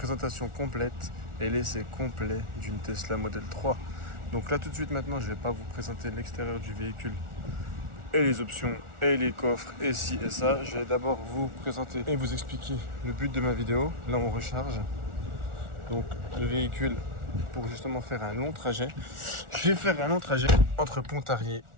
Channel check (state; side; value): late; left; 1.4 ms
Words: complète et l'essai complet d'une Tesla Model 3. Donc là tout de suite maintenant je vais pas vous présenter l'extérieur du véhicule et les options et les coffres et ci et ça. Je vais d'abord vous présenter et vous expliquer le but de ma vidéo. Là on recharge donc le véhicule pour justement faire un long trajet. Je vais faire un long trajet entre Pontarlier